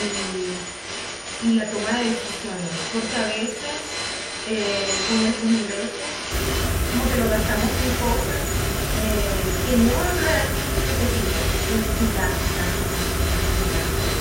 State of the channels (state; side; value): identical; both; correlation 1.00